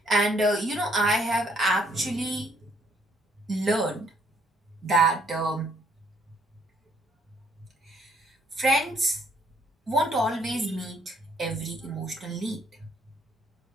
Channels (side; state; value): both; normal; correlation 0.66